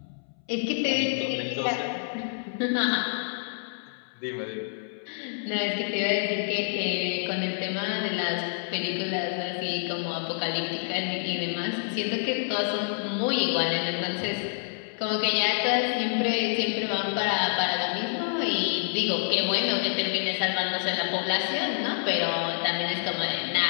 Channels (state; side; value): silent; right; 60 dB below the other